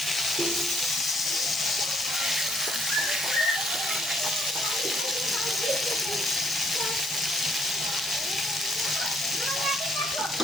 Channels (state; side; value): normal; both; correlation 0.69